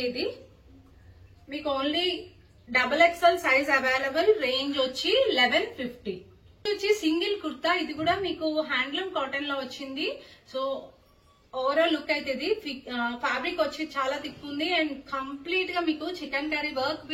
ఇది మీకు only XXL size available. Range వచ్చి 1150. వచ్చి సింగిల్ కుర్తా. ఇది కూడా మీకు హ్యాండ్లూమ్ కాటన్ లో వచ్చింది. సో ఓవరాల్ లుక్ అయితే ఇది. ఫ్యాబ్రిక్ వచ్చి చాలా థిక్ ఉంది అండ్ కంప్లీట్ గా మీకు chicken curry work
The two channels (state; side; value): identical; both; correlation 1.00